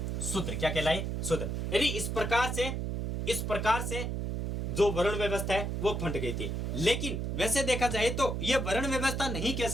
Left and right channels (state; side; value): noise; right; hum, 2 dB below the sound